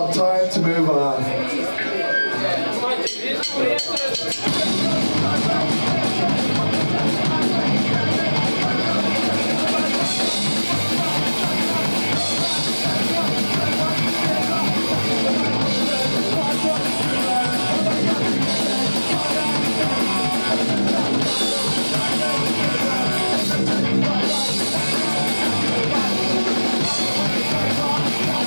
Time to Move On.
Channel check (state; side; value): inverted; both; correlation -1.00